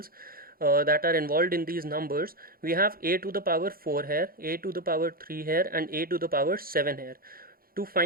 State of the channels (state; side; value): late; left; 0.43 ms